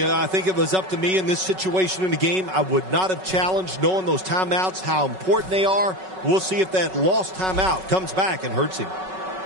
think if it was up to me in this situation in the game, I would not have challenged, knowing those timeouts, how important they are. We'll see if that lost timeout comes back and hurts him.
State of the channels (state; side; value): late; left; 5.3 ms